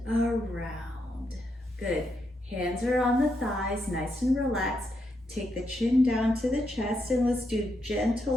around. Good. Hands are on the thighs, nice and relaxed. Take the chin down to the chest, and let's do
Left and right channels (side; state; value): both; normal; correlation 0.81